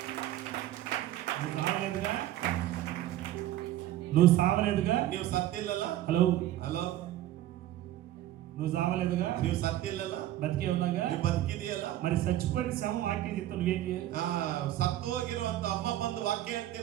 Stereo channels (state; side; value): quieter; left; 13.8 dB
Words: నువ్వు సావలేదుగా, నువ్వు సావలేదుగా, ನೀವು ಸತ್ತಿಲ್ಲಲ್ಲ? హలో ಹಲೋ, నువ్వు సావలేదుగా, ನೀವು ಸತ್ತಿಲ್ಲಲ್ಲ? బతికే ఉన్నాగా, ನೀವು ಬದುಕಿದೆಯಲ್ಲ? మరి చచ్చిపోయిన శవం వాక్యం చెప్తా నువ్వేం చేయాలి? ಸತ್ತು ಹೋಗಿರುವಂತ ಅಮ್ಮ ಬಂದು ವಾಕ್ಯ